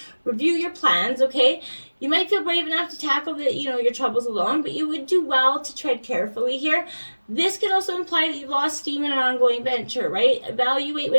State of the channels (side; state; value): both; inverted; correlation -1.00